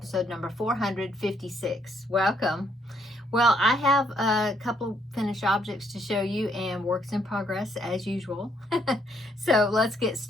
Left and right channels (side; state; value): both; normal; correlation 0.71